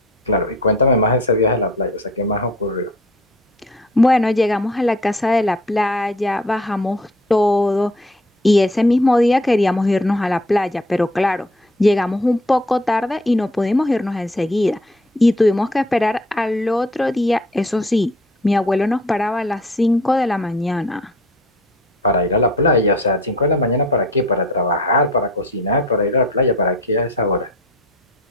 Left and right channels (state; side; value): normal; both; correlation 0.52